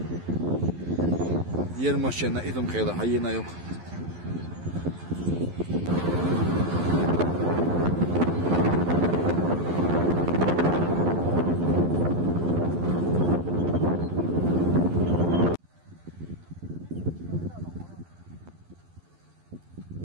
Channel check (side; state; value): left; late; 12 ms